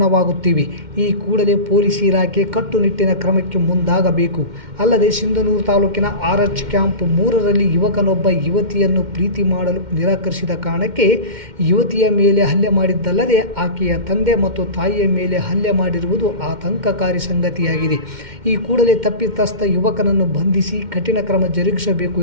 ಈ ಕೂಡಲೇ ಪೊಲೀಸ್ ಇಲಾಖೆ ಕಟ್ಟುನಿಟ್ಟಿನ ಕ್ರಮಕ್ಕೆ ಮುಂದಾಗಬೇಕು. ಅಲ್ಲದೆ ಸಿಂಧನೂರು ತಾಲೂಕಿನ RH ಕ್ಯಾಂಪ್ 3ರಲ್ಲಿ ಯುವಕನೊಬ್ಬ ಯುವತಿಯನ್ನು ಪ್ರೀತಿ ಮಾಡಲು ನಿರಾಕರಿಸಿದ ಕಾರಣಕ್ಕೆ ಯುವತಿಯ ಮೇಲೆ ಹಲ್ಲೆ ಮಾಡಿದ್ದಲ್ಲದೆ ಆಕೆಯ ತಂದೆ ಮತ್ತು ತಾಯಿಯ ಮೇಲೆ ಹಲ್ಲೆ ಮಾಡಿರುವುದು ಆತಂಕಕಾರಿ ಸಂಗತಿಯಾಗಿದೆ. ಈ ಕೂಡಲೇ ತಪ್ಪಿತಸ್ಥ ಯುವಕನನ್ನು ಬಂಧಿಸಿ ಕಠಿಣ ಕ್ರಮ ಜರುಗಿಸಬೇಕು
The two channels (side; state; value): left; late; 2.1 ms